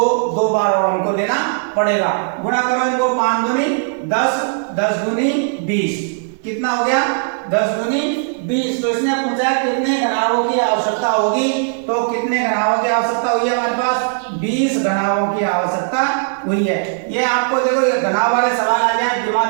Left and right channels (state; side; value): silent; left; digital silence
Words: बार और हमको देना पड़ेगा। गुणा करो इनको, 5 दूनी 10, 10 दूनी 20, कितना हो गया? 10 दूनी 20। तो इसने पूछा कितने घनाभों की आवश्यकता होगी, तो कितने घनाभों की आवश्यकता हुई है हमारे पास? 20 घनाभों की आवश्यकता हुई है। ये आपको देखो ये घनाभ वाले सवाल आ जाए,